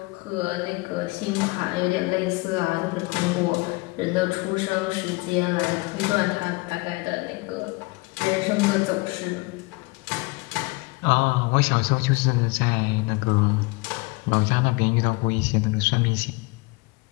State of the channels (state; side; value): quieter; right; 25.6 dB